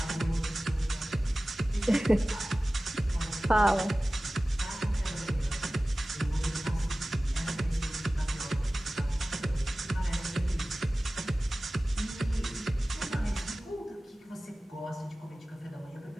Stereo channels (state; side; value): normal; both; correlation 0.97